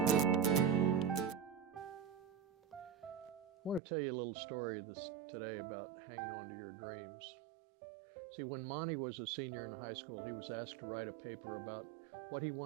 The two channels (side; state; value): left; drops out; at 3.8 s